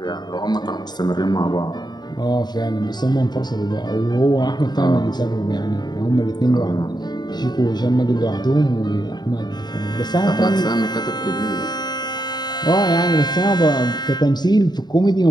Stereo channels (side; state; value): right; late; 0.20 ms